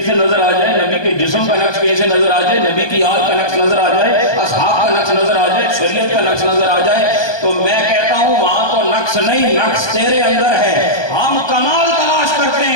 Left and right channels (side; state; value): right; late; 1.2 ms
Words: سے نظر آ جائے، نبی کے جسم کا نقش کہیں سے نظر آ جائے، نبی کی آل کا نقش نظر آ جائے، اصحاب کا نقش نظر آ جائے، شریعت کا نقش نظر آ جائے، تو میں کہتا ہوں وہاں تو نقش نہیں، نقش تیرے اندر ہے. ہم کمال تلاش کرتے